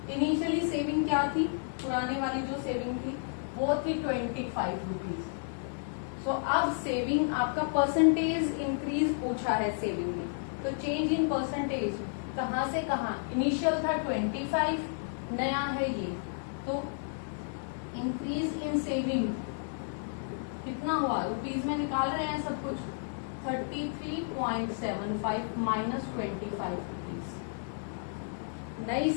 इनिशियली सेविंग क्या थी, पुराने वाली जो सेविंग थी वो थी 25 रुपीज। सो अब सेविंग आपका परसेंटेज इंक्रीज पूछा है सेविंग में, तो चेंज इन परसेंटेज कहाँ से कहाँ, इनिशियल था 25, नया है ये, तो इंक्रीज इन सेविंग कितना हुआ, रुपीज में निकाल रहे हैं सब कुछ, 33.75 माइनस 25 रुपीज। नई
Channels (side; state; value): right; silent; digital silence